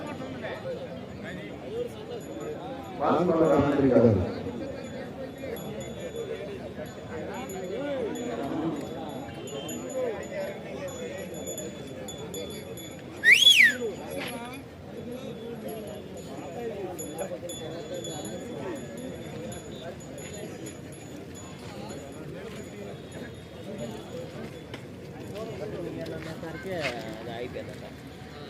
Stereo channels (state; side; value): identical; both; correlation 1.00